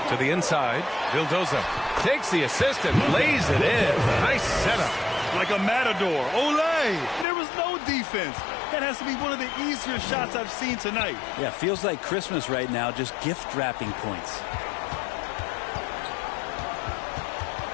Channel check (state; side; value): drops out; right; at 7.2 s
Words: To the inside, Vildoza takes the assist and lays it in. Nice setup. Like a matador. Olay! There was no defense. That has to be one of the easier shots I've seen tonight. Yeah, feels like Christmas right now, just gift wrapping points.